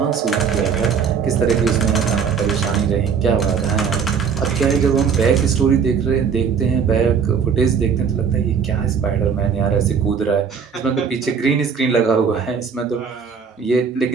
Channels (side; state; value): left; quieter; 6.5 dB